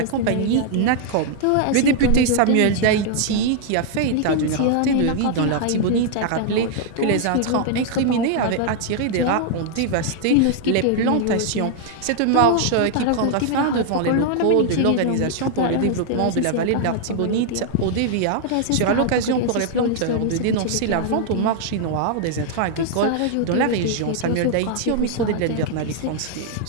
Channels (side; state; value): both; different; correlation 0.00